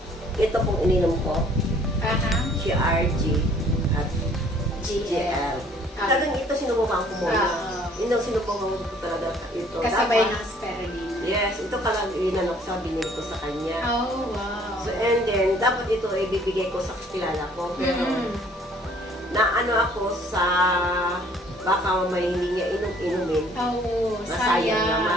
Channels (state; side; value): normal; both; correlation 0.58